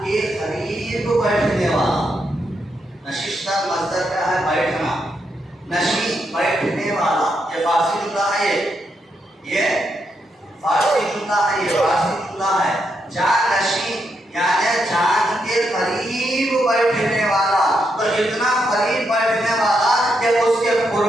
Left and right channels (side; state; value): both; normal; correlation 0.81